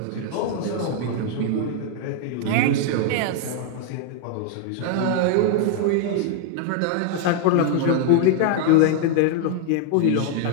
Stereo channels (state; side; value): different; both; correlation 0.00